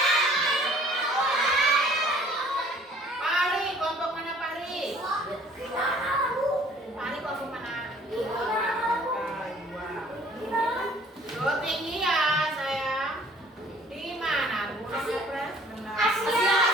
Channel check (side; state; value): both; normal; correlation 0.55